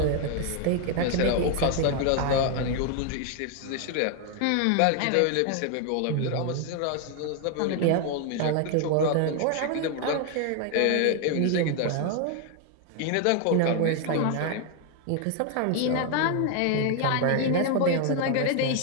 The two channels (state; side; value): different; both; correlation 0.01